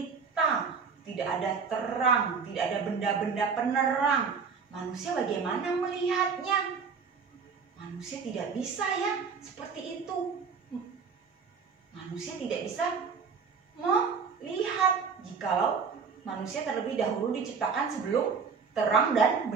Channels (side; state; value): left; quieter; 5.6 dB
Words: tidak ada terang, tidak ada benda-benda penerang. Manusia bagaimana melihatnya? Manusia tidak bisa ya seperti itu. Manusia tidak bisa melihat jikalau manusia terlebih dahulu diciptakan sebelum terang dan